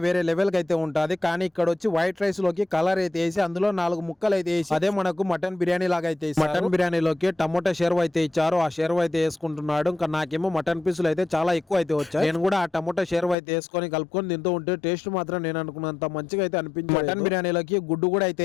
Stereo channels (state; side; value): drops out; right; at 13.4 s